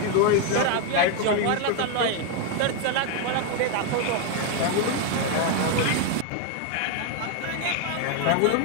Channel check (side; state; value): both; different; correlation 0.01